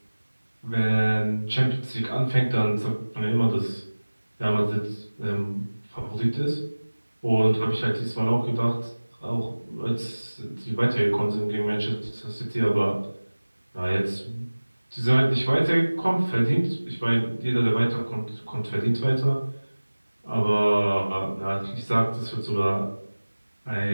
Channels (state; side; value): inverted; both; correlation -1.00